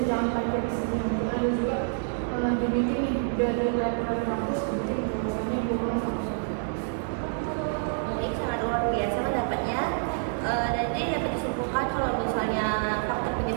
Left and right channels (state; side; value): silent; left; digital silence